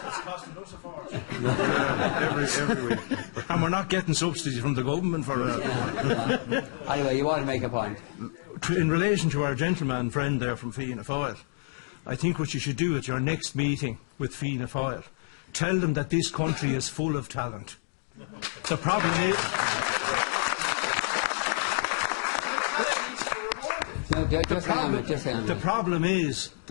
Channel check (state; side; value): silent; right; digital silence